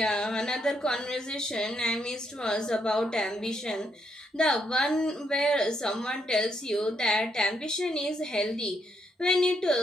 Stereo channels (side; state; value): both; normal; correlation 0.76